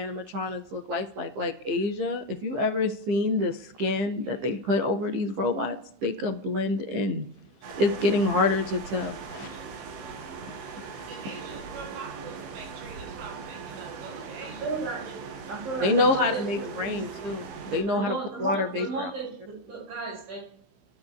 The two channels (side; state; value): left; late; 15 ms